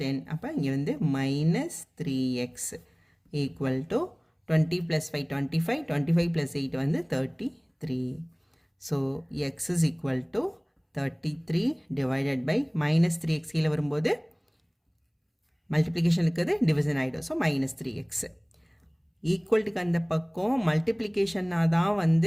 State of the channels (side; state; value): both; identical; correlation 1.00